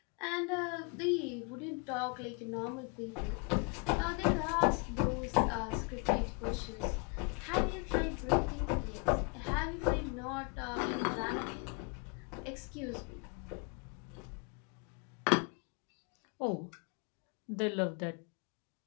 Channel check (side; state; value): right; quieter; 32.9 dB